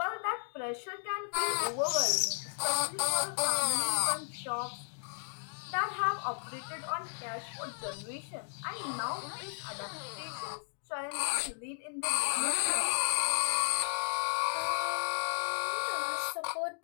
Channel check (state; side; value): silent; right; 55 dB below the other